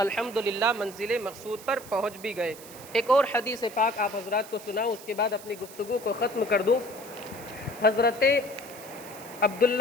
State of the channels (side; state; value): right; noise; hiss, 17 dB below the sound